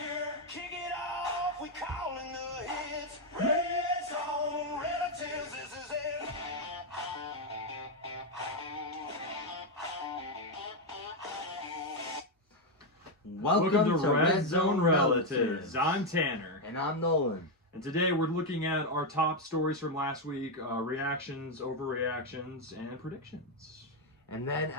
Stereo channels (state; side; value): normal; both; correlation 0.03